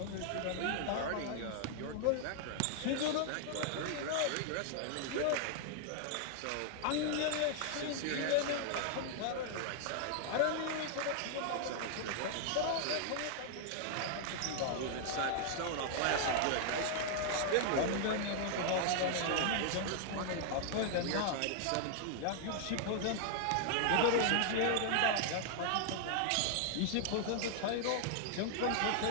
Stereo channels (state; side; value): different; both; correlation 0.00